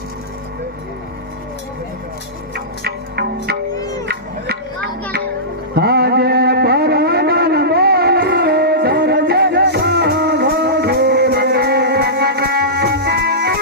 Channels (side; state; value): both; normal; correlation -0.18